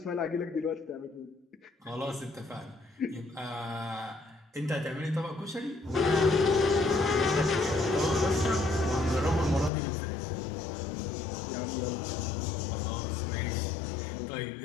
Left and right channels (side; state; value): right; drops out; at 9.7 s